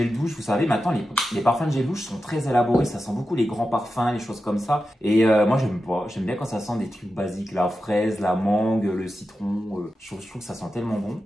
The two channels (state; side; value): normal; both; correlation 0.91